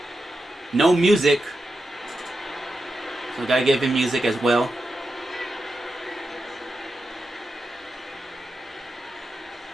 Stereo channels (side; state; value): both; normal; correlation 0.89